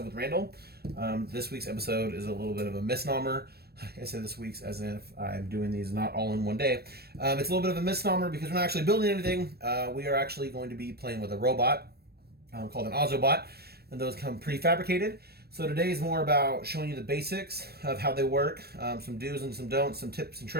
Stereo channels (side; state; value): left; late; 0.46 ms